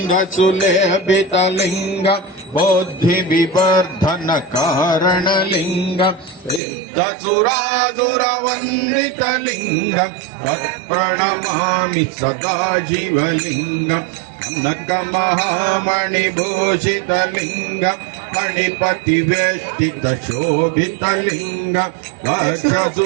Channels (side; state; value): left; drops out; at 6.6 s